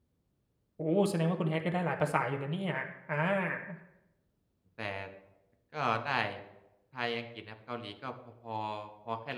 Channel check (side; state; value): both; identical; correlation 1.00